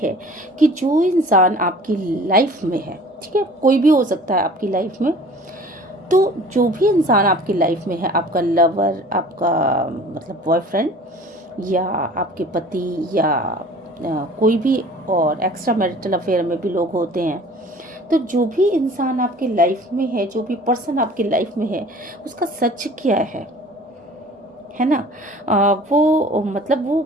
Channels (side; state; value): both; normal; correlation 0.47